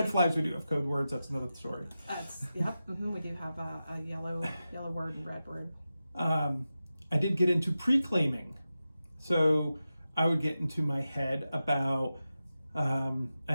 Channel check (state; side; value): inverted; both; correlation -0.92